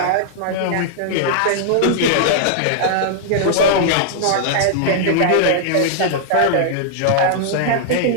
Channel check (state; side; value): different; both; correlation -0.01